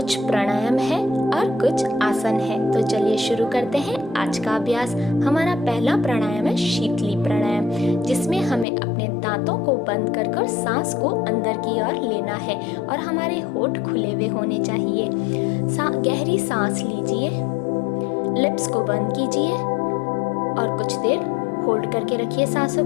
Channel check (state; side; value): drops out; right; at 8.7 s